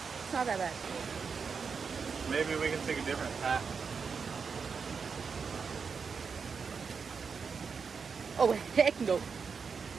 not that bad. Maybe we can take a different path. Oh, heck no.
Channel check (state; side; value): quieter; left; 5.6 dB